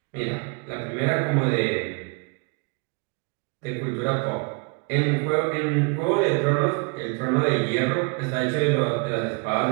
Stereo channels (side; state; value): left; quieter; 33.4 dB